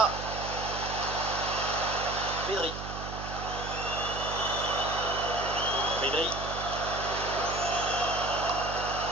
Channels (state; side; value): noise; right; hum, 8 dB below the sound